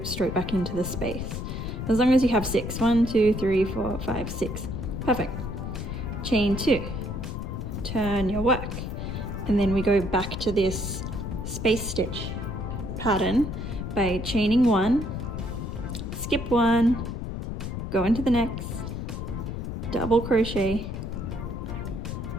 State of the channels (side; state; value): left; noise; rumble, 5 dB below the sound